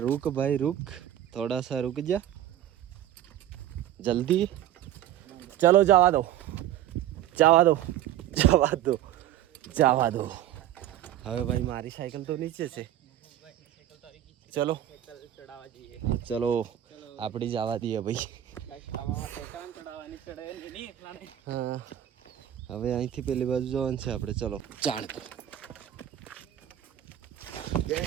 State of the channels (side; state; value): left; quieter; 12.0 dB